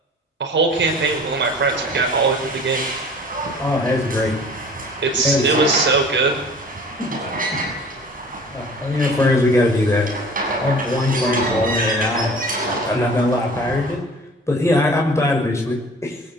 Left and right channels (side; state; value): both; normal; correlation 0.46